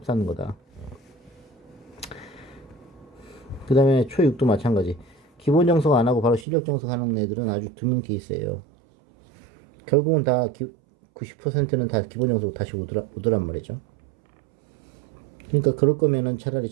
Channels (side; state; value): left; drops out; at 6.5 s